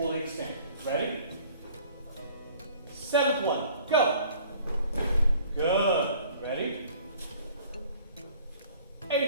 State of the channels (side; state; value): both; inverted; correlation -0.52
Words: extended. Ready? Seventh one, go. Good. Ready?